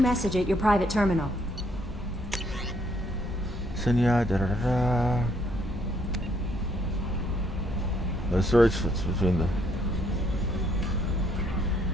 at your private terminal. Senya, da da da da. The search fits between the.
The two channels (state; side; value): normal; both; correlation 0.69